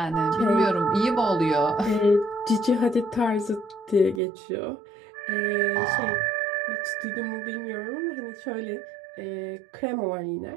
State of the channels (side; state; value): left; drops out; at 4.2 s